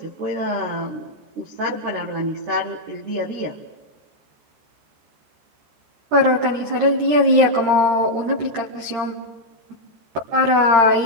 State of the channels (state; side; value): late; left; 13 ms